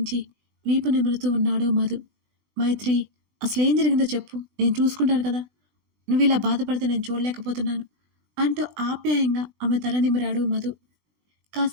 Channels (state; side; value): late; left; 20 ms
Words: వీపు నిమురుతూ ఉన్నాడు మధు. మైత్రి, అసలేం జరిగిందో చెప్పు, నేను చూసుకుంటాను కదా. నువ్వు ఇలా బాధపడితే నేను చూడలేకపోతున్నాను అంటూ ఆప్యాయంగా ఆమె తల నిమిరాడు మధు.